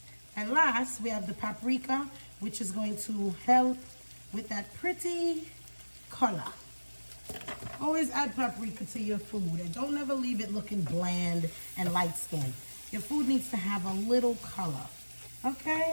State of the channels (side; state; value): both; inverted; correlation -1.00